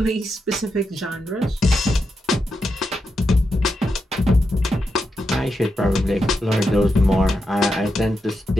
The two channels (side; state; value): both; normal; correlation 0.86